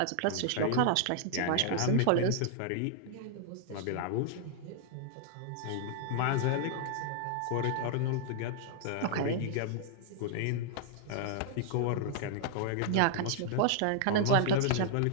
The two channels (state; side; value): different; both; correlation -0.01